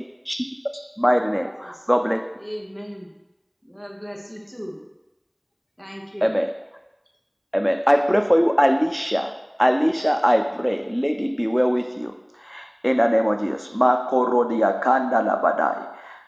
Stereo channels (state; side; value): identical; both; correlation 1.00